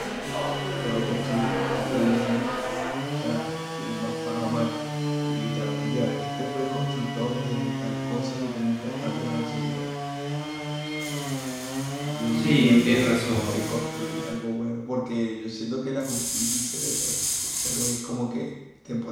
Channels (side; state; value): both; identical; correlation 1.00